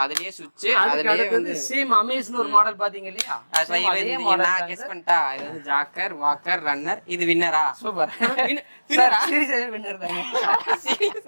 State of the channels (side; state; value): both; inverted; correlation -1.00